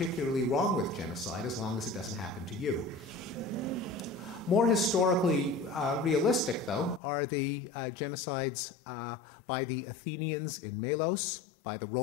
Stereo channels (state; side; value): drops out; right; at 7.0 s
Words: wrong with genocide as long as it doesn't happen to you. More historically realistic, though, are the genocides by the Athenians in Melos, by the